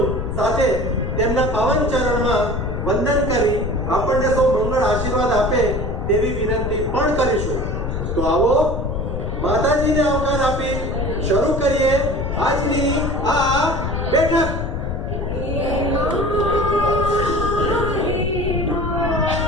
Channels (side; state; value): left; noise; rumble, 3 dB below the sound